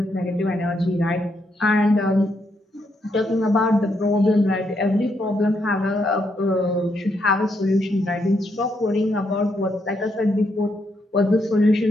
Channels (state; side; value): normal; both; correlation 0.77